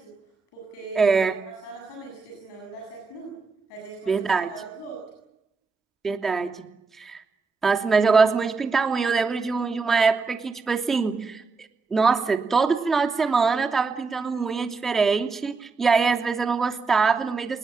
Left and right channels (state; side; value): quieter; left; 4.6 dB